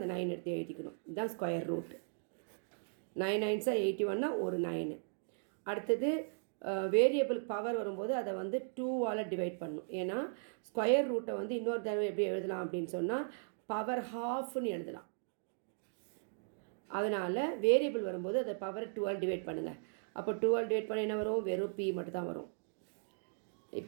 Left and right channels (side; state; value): left; silent; digital silence